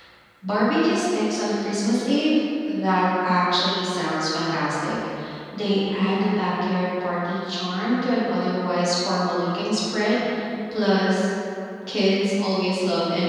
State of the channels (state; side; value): identical; both; correlation 1.00